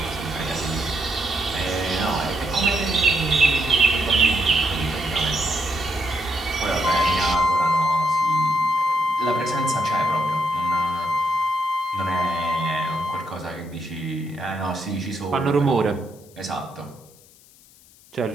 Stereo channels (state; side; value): noise; left; hiss, 26 dB below the sound